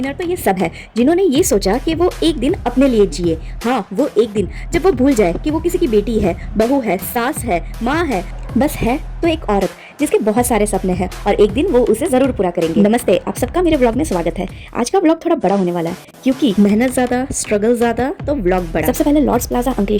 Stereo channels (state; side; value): identical; both; correlation 1.00